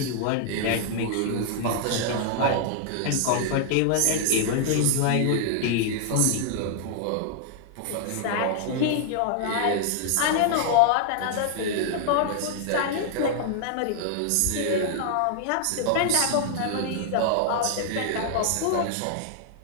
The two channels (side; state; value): both; different; correlation -0.01